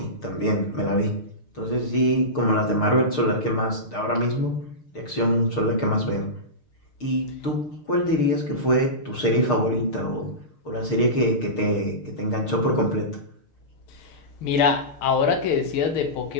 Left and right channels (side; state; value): right; late; 6.6 ms